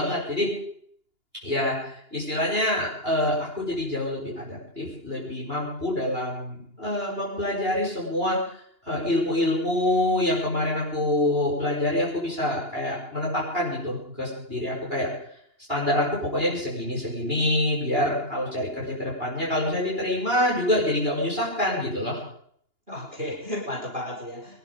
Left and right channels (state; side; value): late; left; 2.8 ms